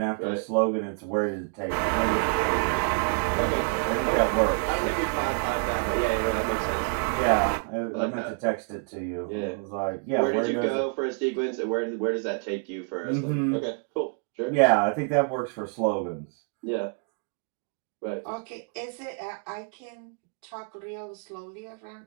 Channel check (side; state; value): left; quieter; 38.2 dB